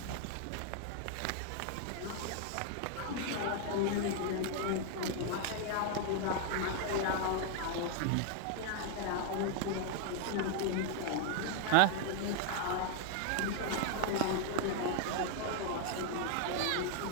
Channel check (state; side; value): different; both; correlation 0.00